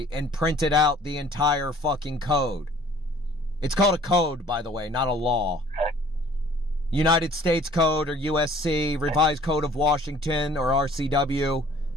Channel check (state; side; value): normal; both; correlation 0.53